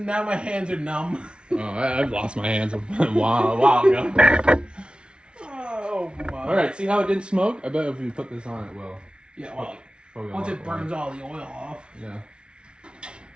now my hands are numb. Oh, I've lost my hands a while ago. Oh, my. All right, see how it didn't smoke? I bet if we put this on, it will. Yeah, well, Probably a once lot it burns all the oil off. Yeah.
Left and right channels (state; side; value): late; left; 0.057 ms